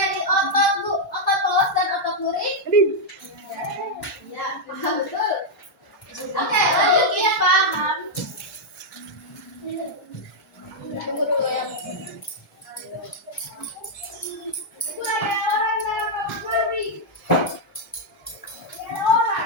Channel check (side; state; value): both; normal; correlation -0.02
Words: otot pelos dan otot luring? Ya, paham betul. Oke, lanjut ya, paham. Tunggu dulu ya. Itu ada orang dalam kamar mandi. Ada